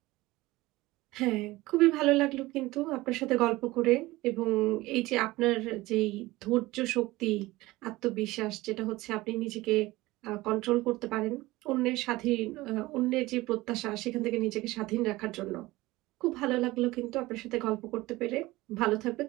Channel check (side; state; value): left; quieter; 19.3 dB